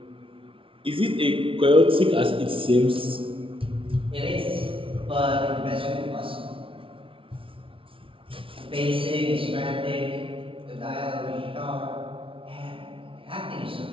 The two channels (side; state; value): left; late; 0.25 ms